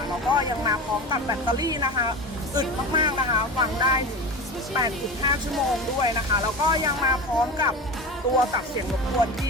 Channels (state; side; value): normal; both; correlation 0.27